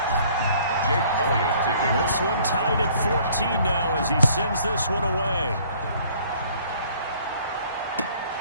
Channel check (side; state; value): both; inverted; correlation -0.57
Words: Jake Elliott taking this one tied at 14 now as he sends this one away.